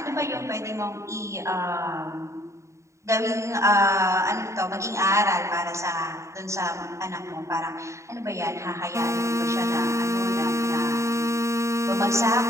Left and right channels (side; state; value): left; late; 0.14 ms